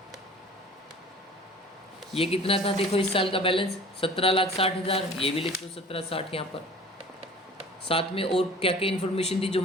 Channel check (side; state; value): both; normal; correlation 0.43